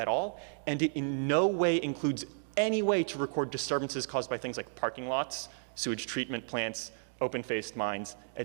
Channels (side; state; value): left; silent; digital silence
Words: all, and it in no way includes any way to record disturbances caused by things like parking lots, sewage treatment plants, open-faced mines,